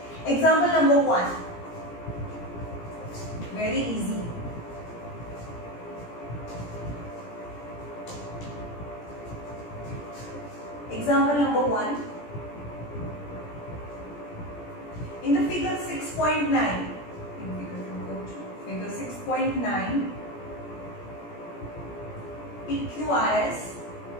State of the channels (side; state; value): right; late; 17 ms